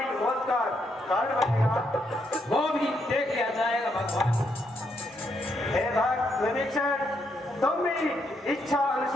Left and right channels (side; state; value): both; normal; correlation 0.77